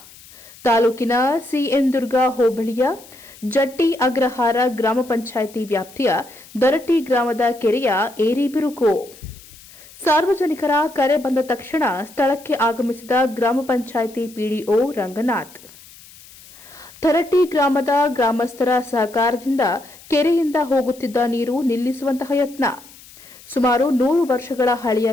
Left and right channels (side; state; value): left; noise; hiss, 22 dB below the sound